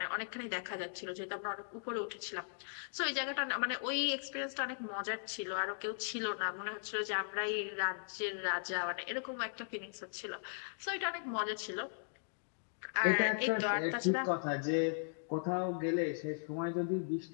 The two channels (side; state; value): right; silent; digital silence